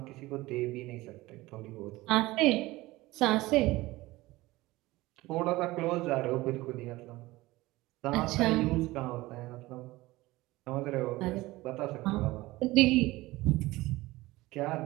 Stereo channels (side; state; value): left; quieter; 19.3 dB